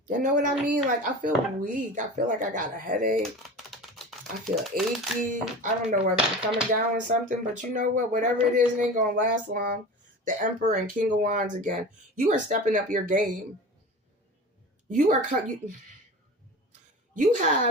You know what I mean? Like, I feel weak. I feel like I got a headache. I feel achy. I don't know whether I'm coming down with something, but you know what? Whatever it is, it ain't going to last long. The Emperor and King of Wands again. You are stepping up your game. You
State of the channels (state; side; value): normal; both; correlation 0.34